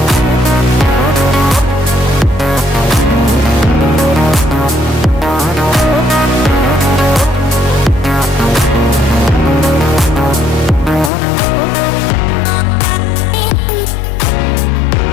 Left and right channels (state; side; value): drops out; right; at 11.1 s